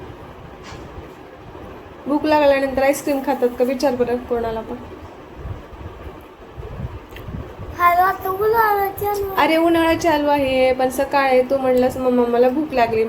भूक लागल्यानंतर आईस्क्रीम खातात का, विचार बरं कोणाला पण. अरे उन्हाळा चालू आहे, पण सकाळी तू म्हणलंस मम्मा मला भूक लागली,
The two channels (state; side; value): identical; both; correlation 1.00